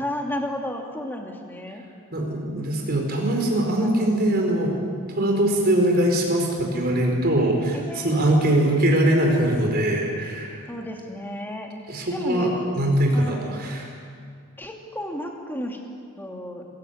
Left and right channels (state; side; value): normal; both; correlation 0.52